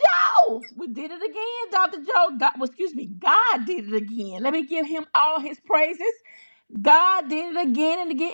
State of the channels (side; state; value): both; inverted; correlation -1.00